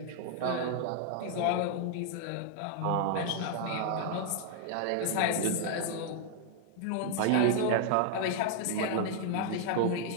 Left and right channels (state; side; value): different; both; correlation 0.00